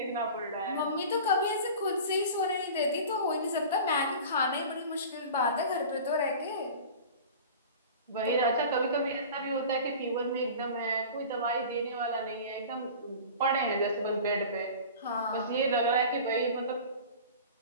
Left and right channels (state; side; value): inverted; both; correlation -0.38